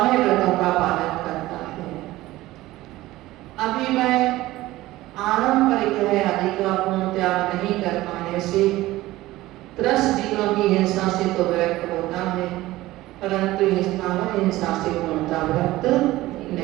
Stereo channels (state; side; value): quieter; left; 17.3 dB